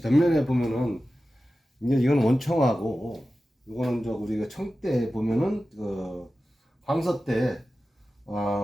보면은 이제 이건 원청하고 이거는 저 우리가 청대 보면은 황서 때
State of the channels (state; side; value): normal; both; correlation 0.94